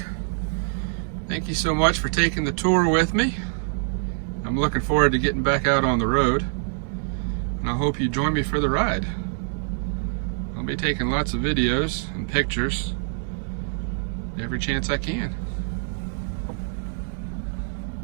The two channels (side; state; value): left; silent; digital silence